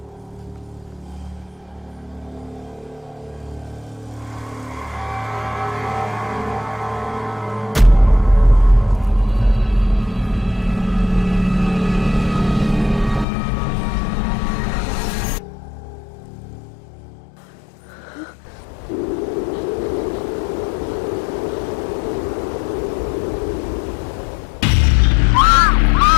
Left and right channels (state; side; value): drops out; right; at 13.2 s